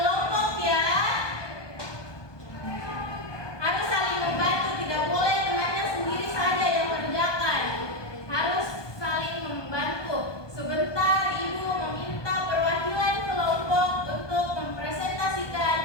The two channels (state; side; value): late; right; 1.2 ms